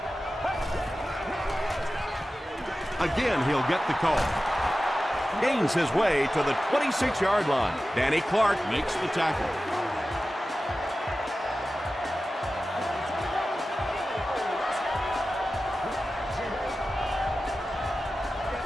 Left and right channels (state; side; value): normal; both; correlation 0.94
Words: Again, he'll get the call. Gains his way to the 26-yard line. Danny Clark makes the tackle.